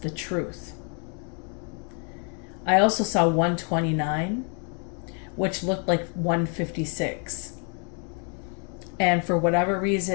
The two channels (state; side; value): quieter; right; 39.8 dB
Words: truth. I also saw 1:29, which looked like 1:56. And for whatever